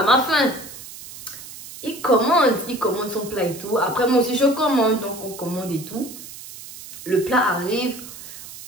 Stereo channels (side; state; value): right; noise; hiss, 14 dB below the sound